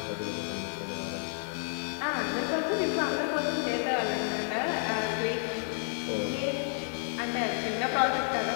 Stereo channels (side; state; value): right; silent; 57 dB below the other